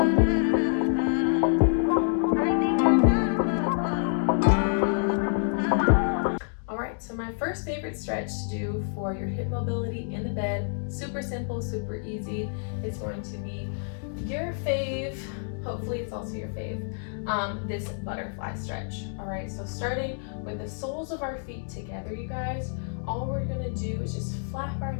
So my first favorite stretch to do for your hip mobility in the bed, super simple, super easy. It's going to be your fave, hopefully it's also your fave, this butterfly stretch. All right, so starting with the soles of our feet together, you guys, all we're gonna do is just flap our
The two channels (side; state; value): right; silent; digital silence